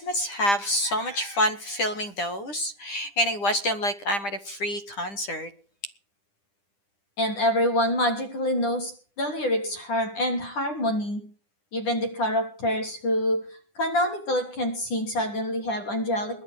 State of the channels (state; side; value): late; right; 10 ms